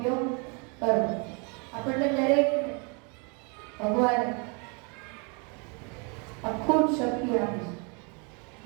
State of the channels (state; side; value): quieter; left; 33.9 dB